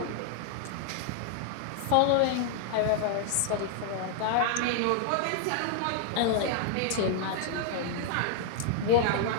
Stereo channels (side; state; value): both; different; correlation 0.00